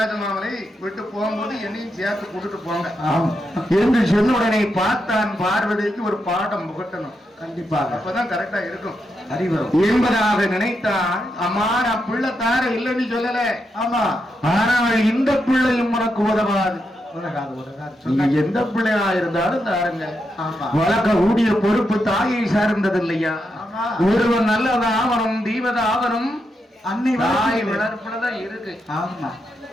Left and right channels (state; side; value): normal; both; correlation 0.84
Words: மாமலை விட்டு போகும்போது என்னையும் சேர்த்து கூட்டிட்டு போங்க ஆமா என்று சொன்ன உடனே பார்த்தான் பார்வதிக்கு ஒரு பாடம் புகட்டணும். கண்டிப்பாக அப்பதான் கரெக்டா இருக்கும் அறிவரும் என்பதாக நினைத்தான். அம்மா நான் பிள்ளை தார இல்லைன்னு சொல்லல. ஆமா, ஆனால் இந்த பிள்ளையும் உனக்கு உதவாது. உலகாது உலகாது நீங்க சொன்னாங்க. எந்த பிள்ளையா இருந்தாலும் தாருங்க. ஆமா வளர்க்க கூடிய பொறுப்பு தாயை சார்ந்தது இல்லையா? ஆமா, ஒருவன் நல்லதாவனும் தீவதாவனும் அன்னை தாய் வளர்ப்பு. வளர்ப்புலதான் இருக்கு. ஆமா